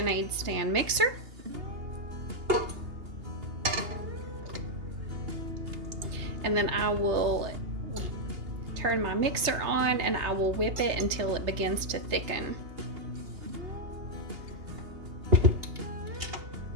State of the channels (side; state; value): left; late; 3.2 ms